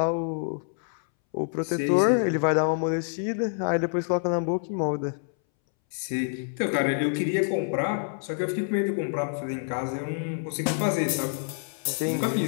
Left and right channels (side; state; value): right; silent; 60 dB below the other